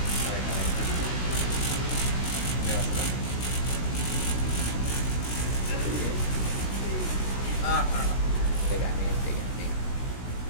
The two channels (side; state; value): right; late; 16 ms